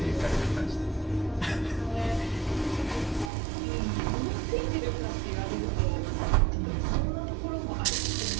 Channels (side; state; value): left; drops out; at 3.3 s